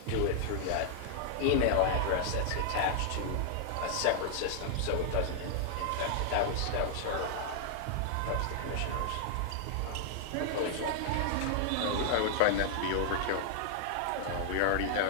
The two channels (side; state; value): both; different; correlation -0.01